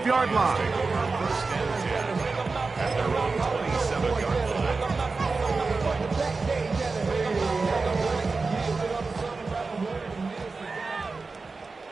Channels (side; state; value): left; quieter; 4.1 dB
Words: line. At their own 27-yard line.